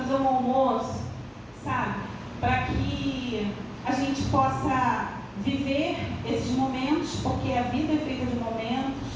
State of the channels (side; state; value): both; identical; correlation 1.00